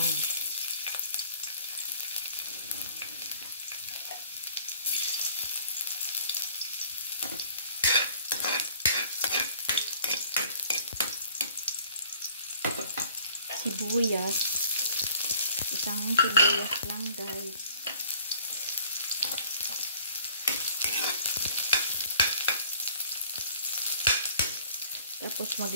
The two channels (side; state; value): both; inverted; correlation -0.54